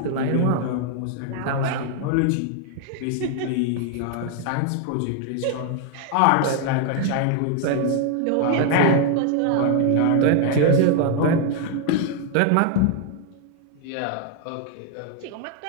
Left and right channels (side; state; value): both; different; correlation 0.00